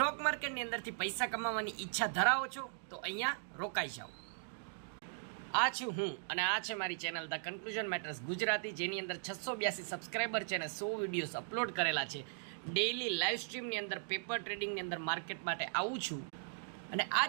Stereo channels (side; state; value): left; silent; digital silence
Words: માર્કેટની અંદરથી પૈસા કમાવાની ઈચ્છા ધરાવો છો તો અહીંયા રોકાઈ જાઓ. આ છું હું અને આ છે મારી channel the conclusion matters Gujarati, જેની અંદર 682 સબસ્ક્રાઈબર છે અને 100 વિડીયોઝ અપલોડ કરેલા છે. ડેઇલી લાઈવ સ્ટ્રીમની અંદર પેપર ટ્રેડિંગની અંદર માર્કેટ માટે આવું છું અને આ